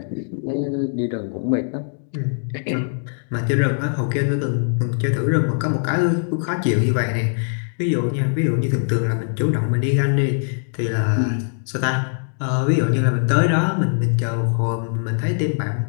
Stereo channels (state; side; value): silent; right; 65 dB below the other